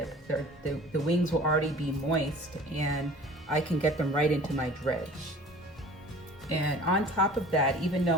The wings will already be moist and I can get them right into my dredge. And on top of that, even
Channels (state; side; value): normal; both; correlation 0.45